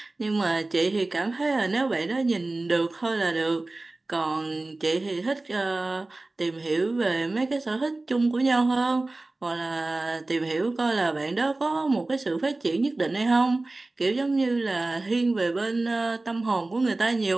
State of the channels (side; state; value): left; quieter; 3.0 dB